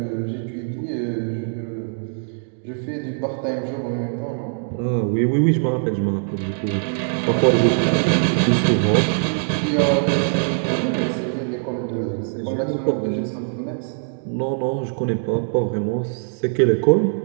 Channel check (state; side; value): silent; left; digital silence